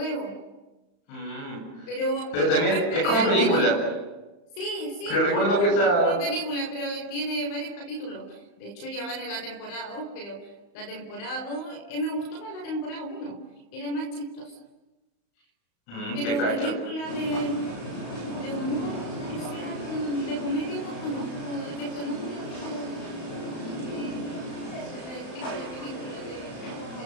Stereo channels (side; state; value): right; late; 35 ms